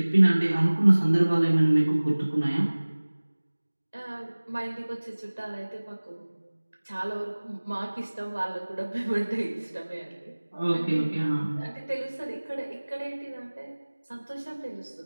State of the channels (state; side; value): inverted; both; correlation -1.00